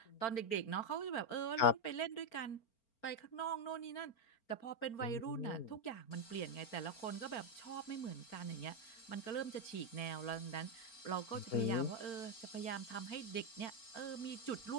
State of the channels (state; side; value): late; right; 4.4 ms